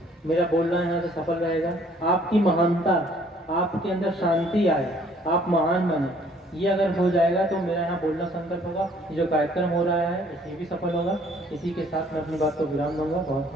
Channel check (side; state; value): both; normal; correlation 0.59